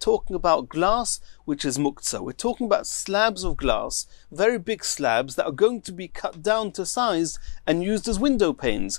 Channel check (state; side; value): quieter; right; 39.8 dB